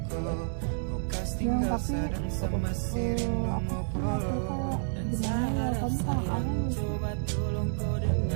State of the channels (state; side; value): silent; left; digital silence